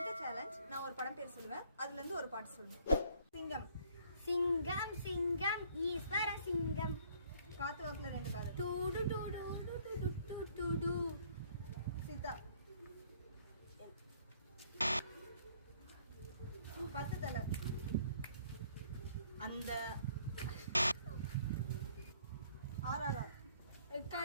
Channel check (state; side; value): inverted; both; correlation -0.61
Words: சேலஞ்ச் நான் ஒரு படம் பேர் சொல்லுவேன், அதுல இருந்து ஒரு பாட்டு சொல்லுவேன். சிங்கம். சிங்கம் சிங்கம் ஈஸ்வர சிங்கம். காத்து வாக்குல ரெண்டு காது. டூடு டூடு டூடு டூடு. சீதா. 10 தலை. அந்த ஆர்ஆர்ஆர்.